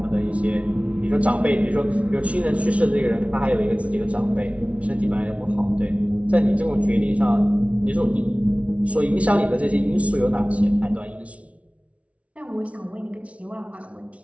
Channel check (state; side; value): late; left; 0.064 ms